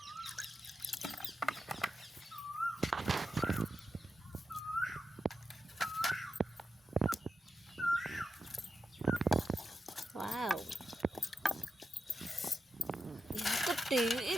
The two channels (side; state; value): both; normal; correlation 0.88